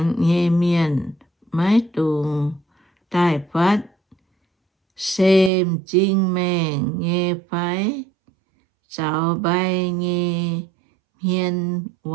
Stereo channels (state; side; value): drops out; left; at 5.5 s